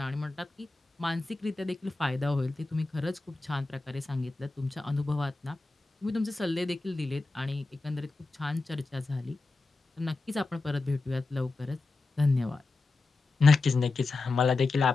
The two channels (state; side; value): quieter; right; 3.5 dB